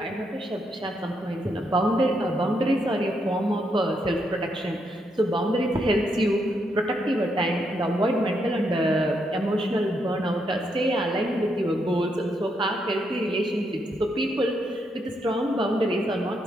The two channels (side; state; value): both; normal; correlation 0.78